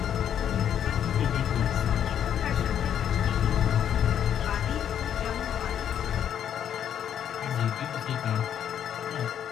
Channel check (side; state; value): right; quieter; 9.5 dB